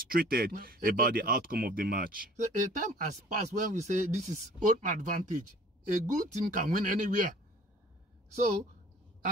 about the outcome of the match. So a time has passed when we say this is own advantage. A good team can win anywhere. So,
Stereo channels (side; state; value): both; normal; correlation 0.51